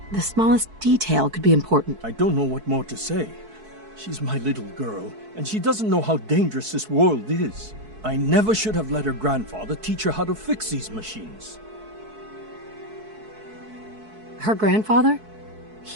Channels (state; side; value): late; left; 4.6 ms